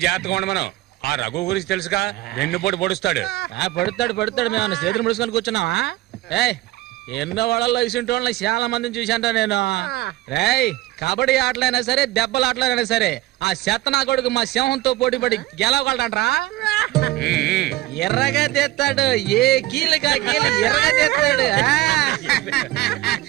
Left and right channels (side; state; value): left; quieter; 17.3 dB